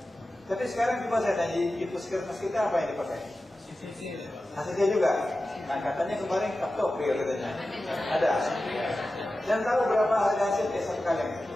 Tapi sekarang coba saya tanya di puskesmas kita apa yang dipakai? HCT juga. Nah katanya kemarin captopril katanya. Ada. Dan tahu berapa harga HCT satu kaleng?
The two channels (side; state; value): both; normal; correlation 0.94